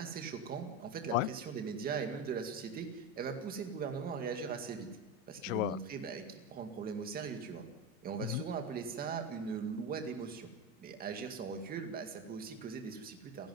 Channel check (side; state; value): both; normal; correlation 0.19